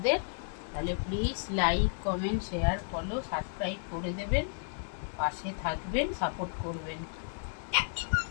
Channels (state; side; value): silent; right; digital silence